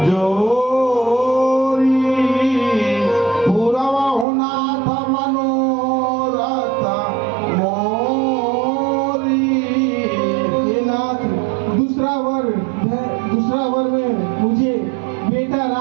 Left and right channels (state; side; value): drops out; left; at 4.2 s